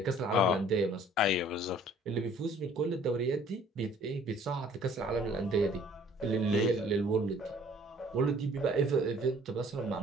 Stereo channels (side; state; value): both; normal; correlation 0.55